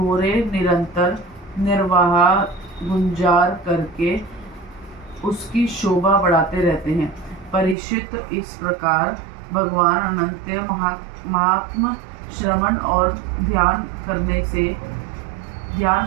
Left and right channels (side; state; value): left; drops out; at 7.8 s